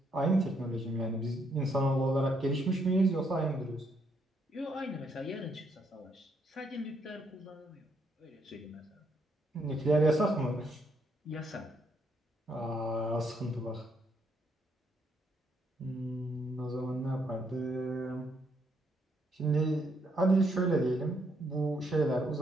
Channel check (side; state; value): both; normal; correlation 0.74